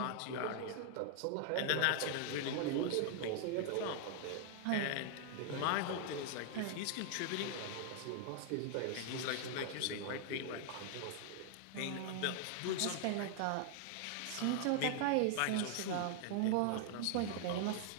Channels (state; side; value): different; both; correlation 0.00